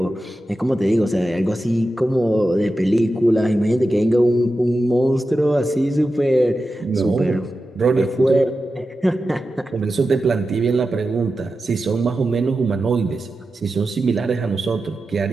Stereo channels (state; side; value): normal; both; correlation 0.92